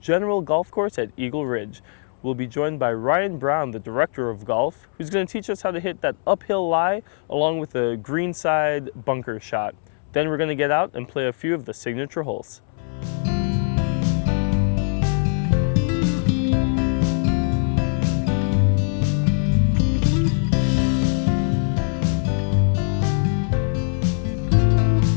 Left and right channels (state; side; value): silent; right; 64 dB below the other